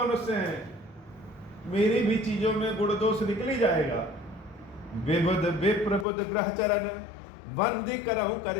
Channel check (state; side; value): drops out; right; at 6.1 s